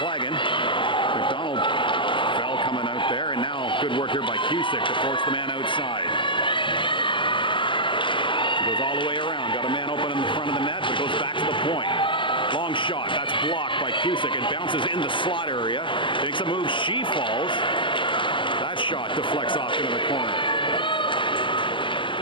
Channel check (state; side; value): late; right; 0.24 ms